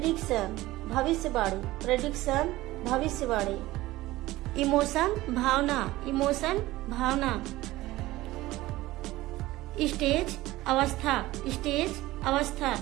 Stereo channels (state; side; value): quieter; left; 17.7 dB